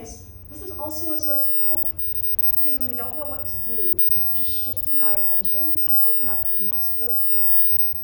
this is also a source of hope, because when we don't know what to do, just shifting our attention can open up new possibilities.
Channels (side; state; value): right; quieter; 3.9 dB